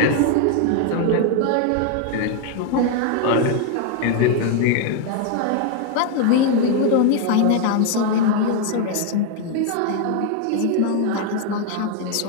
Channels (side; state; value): both; different; correlation 0.01